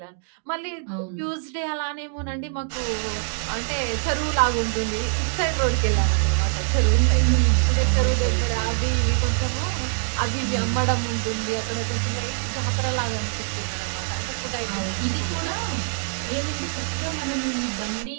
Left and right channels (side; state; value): left; silent; digital silence